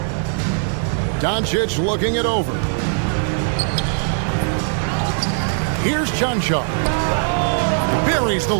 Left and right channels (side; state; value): left; silent; 58 dB below the other